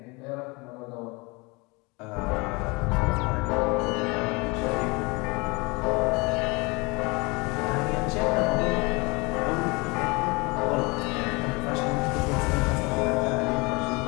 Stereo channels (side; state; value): right; quieter; 26.8 dB